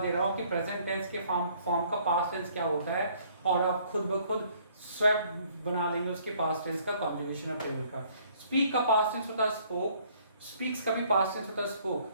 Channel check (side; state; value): both; inverted; correlation -0.61